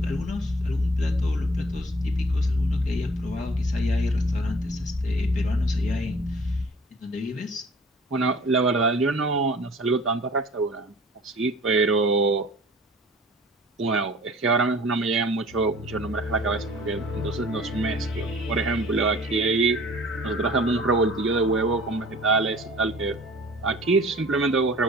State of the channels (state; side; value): normal; both; correlation 0.49